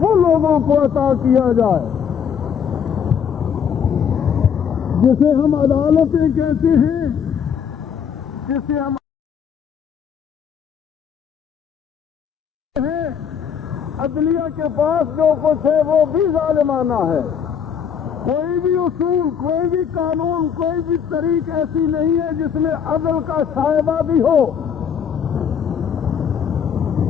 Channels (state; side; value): quieter; right; 7.6 dB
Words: لوگوں کو عطا کیا جائے، جسے ہم عدالتیں کہتے ہیں، جسے ہم عدلیہ کے پاس جو کچھ ہے وہ بھی ظالمانہ ہے۔ کوئی بھی اصول، کوئی بھی قانون، کوئی بھی طریق ایسی نہیں ہے جس میں عدل کا شائبہ بھی ہو۔